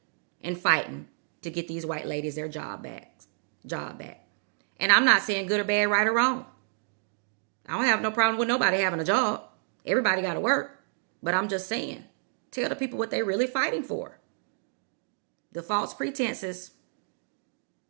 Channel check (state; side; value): silent; left; digital silence